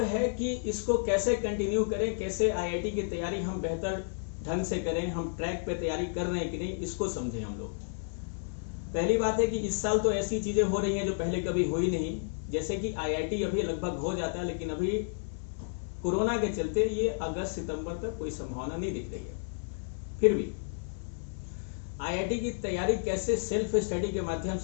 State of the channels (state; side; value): silent; right; 56 dB below the other